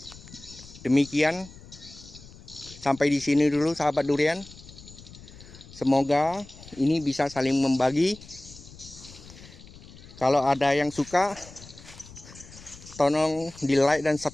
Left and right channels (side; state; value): left; noise; rumble, 19 dB below the sound